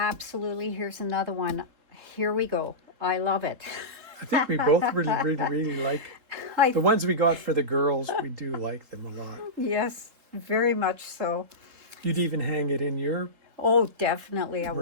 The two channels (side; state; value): left; late; 3.7 ms